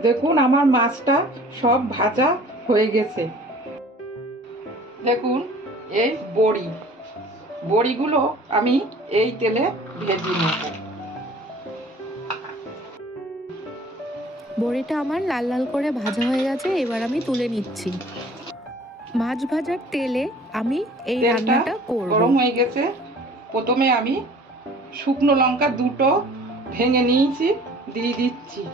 দেখুন, আমার মাছটা সব ভাজা হয়ে গেছে। দেখুন, এই বড়িগুলো আমি এই তেলে ভেজে নেব। বড়িটা আমার লাল লাল করে ভাজা হয়ে গেছে, এবার আমি তুলে নিচ্ছি। মাছ ভাজার তেলে আমি এই রান্নাটা করব। গরম হয়ে গেছে, প্রথমে আমি শুকনো লঙ্কা দুটো ভেঙে নিয়েছি, দিয়ে দিচ্ছি।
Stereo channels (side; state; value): both; normal; correlation 0.49